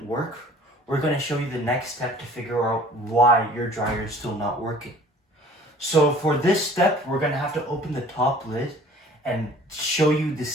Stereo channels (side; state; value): both; normal; correlation 0.50